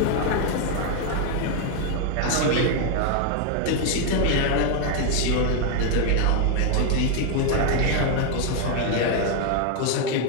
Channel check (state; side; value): different; both; correlation 0.01